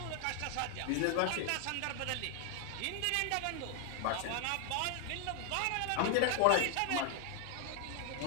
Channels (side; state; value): both; different; correlation 0.00